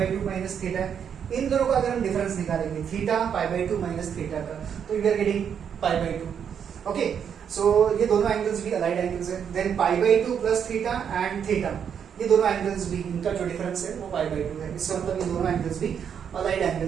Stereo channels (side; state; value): left; quieter; 7.9 dB